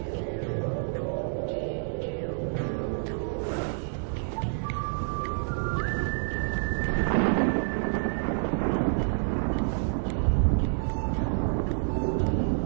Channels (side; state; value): left; silent; digital silence